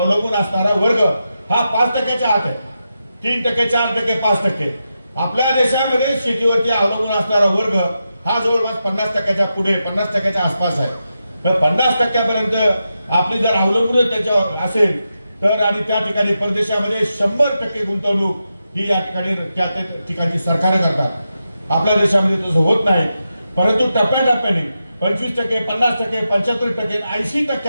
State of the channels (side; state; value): both; inverted; correlation -0.88